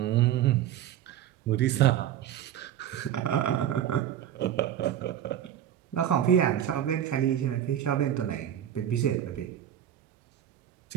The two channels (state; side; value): quieter; left; 10.9 dB